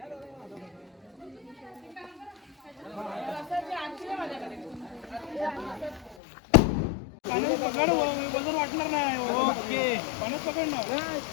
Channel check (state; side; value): drops out; right; at 6.2 s